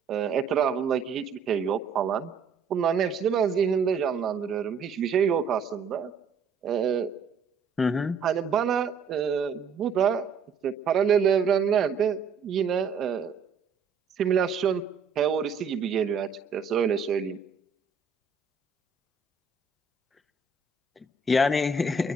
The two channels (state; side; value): quieter; left; 5.3 dB